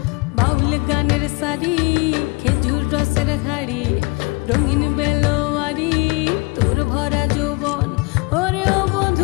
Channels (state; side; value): quieter; right; 27.2 dB